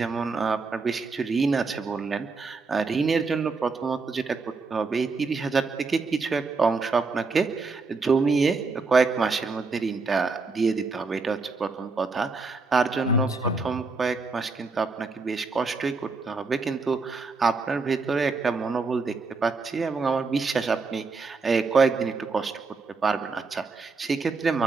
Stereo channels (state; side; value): quieter; left; 4.1 dB